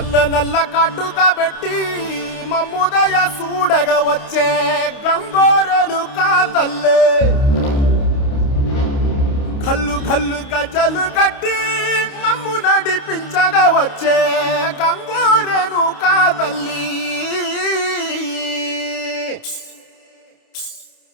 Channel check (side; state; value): right; late; 29 ms